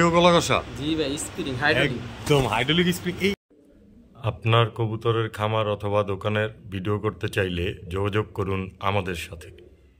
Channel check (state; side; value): identical; both; correlation 1.00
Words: গলা কষা? জি ভাই স্প্রিং হাইড্রোলিক, একদম হাইড্রোলিক স্প্রিং। আপনার কবুতরের খামার অথবা দোকানের ভিডিও করতে চাইলে যোগাযোগ করুন আমাদের সাথে।